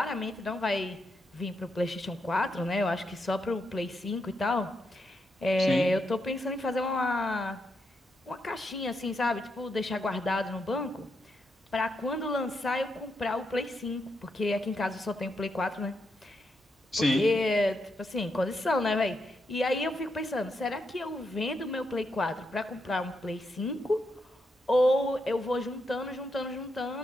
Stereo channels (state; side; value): normal; both; correlation 0.82